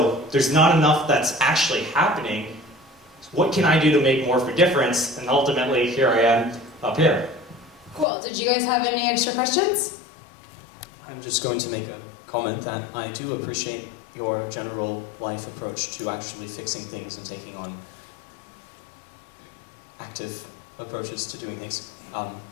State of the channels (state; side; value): drops out; right; at 8.1 s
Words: There's not enough that's actually happening. What can I do to make more of a difference? And ultimately, here I am up here. Cool. Did you guys have any extra questions? I'm just going to make a comment that I do appreciate your general life approach to actually fixing things and taking on active approaches to doing things.